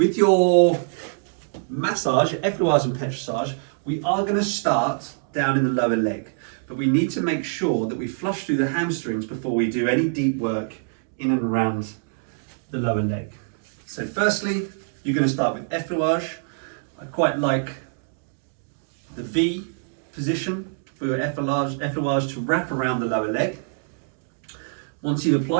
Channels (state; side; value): silent; left; digital silence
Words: your massage, Effleurage and Petrissage, we are going to start down in the lower leg, but we need to make sure that we flush through the hamstrings before we do any deep work in and around the lower leg. So firstly, you're going to start with Effleurage. I quite like the V position for your Effleurage to wrap around the lower leg. Once you've